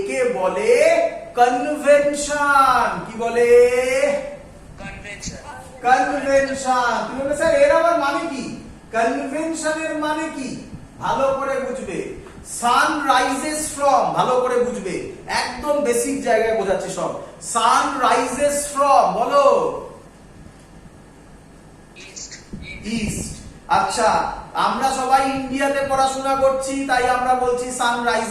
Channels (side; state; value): both; identical; correlation 1.00